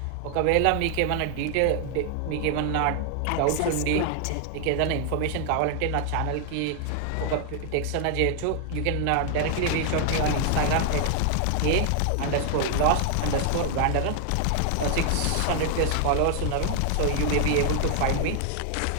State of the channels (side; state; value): both; different; correlation 0.00